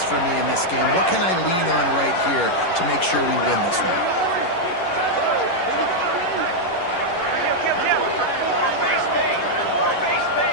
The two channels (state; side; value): late; right; 11 ms